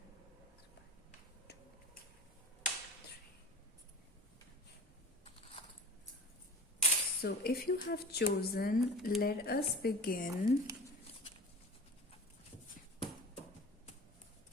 So if you have chosen, let us begin.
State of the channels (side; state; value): both; normal; correlation 0.39